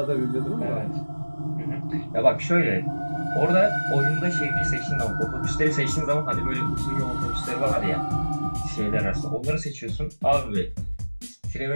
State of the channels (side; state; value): both; inverted; correlation -1.00